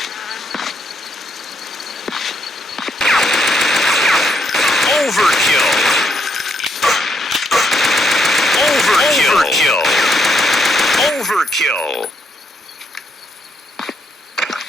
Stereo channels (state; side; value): normal; both; correlation 0.75